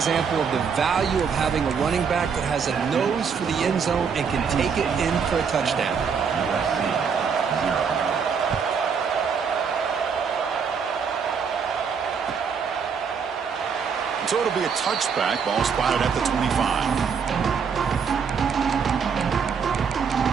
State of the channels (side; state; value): left; quieter; 6.3 dB